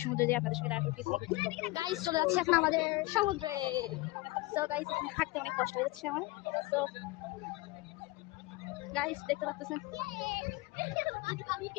সমুদ্রে যেয়ে আপনাদের সঙ্গে দেখা করতেছি। গাইস, চলে যাচ্ছে এখন আমাদের সমুদ্রে। সো গাইস, এখানে হাঁটতে অনেক কষ্ট হয়ে যাচ্ছে আমার। সো গাইস, দেখতে পাচ্ছেন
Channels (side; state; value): right; quieter; 21.3 dB